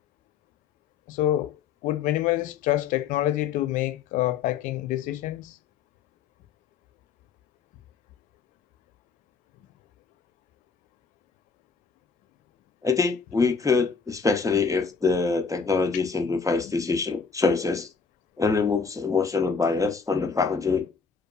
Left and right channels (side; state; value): right; quieter; 5.6 dB